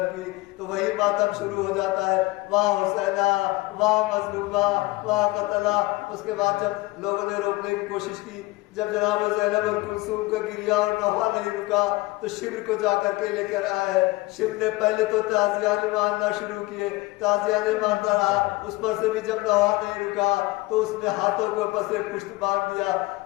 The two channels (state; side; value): quieter; right; 21.1 dB